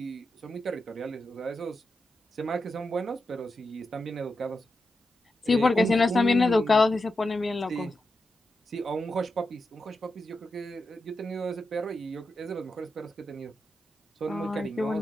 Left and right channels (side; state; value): both; normal; correlation 0.88